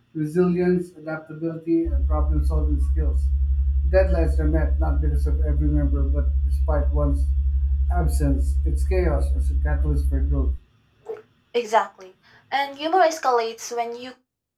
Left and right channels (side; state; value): both; identical; correlation 1.00